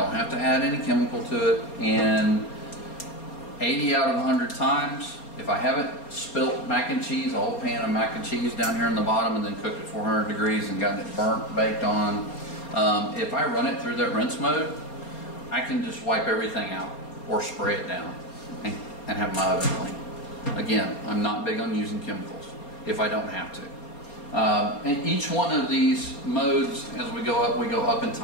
have to add any chemical to it, and 80 out of 100 times, if I haven't spilt mac and cheese, a whole pan of mac and cheese down here in the bottom and then cooked at 400 degrees and gotten it burnt, baked on, if I run it through that rinse mode, I can just wipe everything out or spray it down and have my oven clean. Again, I'm not big on using chemicals if I don't have to. And each one of these modes, as we go up in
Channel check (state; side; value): late; right; 4.3 ms